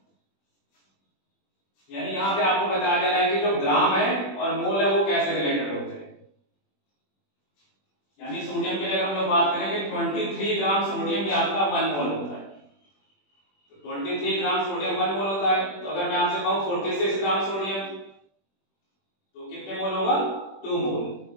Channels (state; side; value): late; right; 21 ms